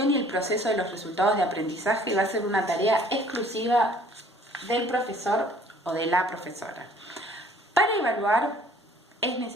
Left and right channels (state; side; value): normal; both; correlation 0.55